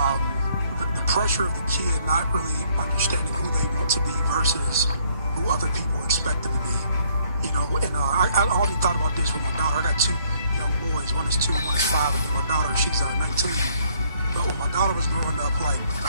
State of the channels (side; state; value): both; inverted; correlation -0.65